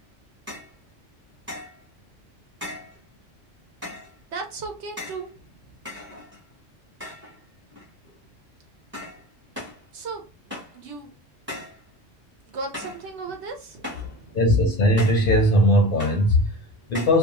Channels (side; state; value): both; normal; correlation 0.32